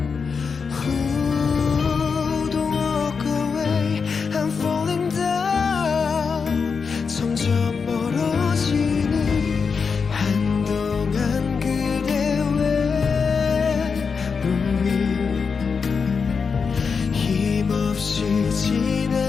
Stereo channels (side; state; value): right; quieter; 5.5 dB